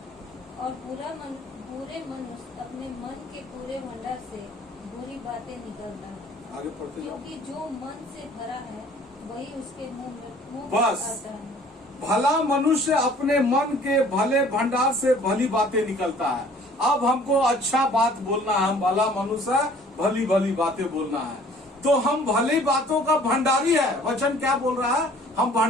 और बुरे मनुष्य अपने मन के पूरे भंडार से बुरी बातें निकलता है। आगे पढ़ते जाओ। क्योंकि जो मन से भरा है वही उसके मुंह बस। आता है। भला मनुष्य अपने मन के भले भंडार से भली बातें निकलता है। अब हमको अच्छा बात बोलना है, हम भला मनुष्य भली बातें बोलना है, तो हम भली बातों का भंडारी है। वचन क्या बोल रहा है? हम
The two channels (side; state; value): both; normal; correlation 0.53